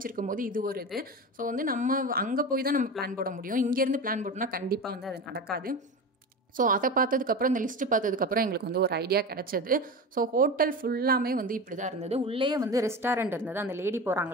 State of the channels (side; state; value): both; normal; correlation 0.27